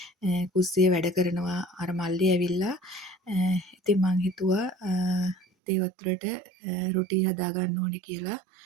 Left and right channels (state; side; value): drops out; left; at 5.5 s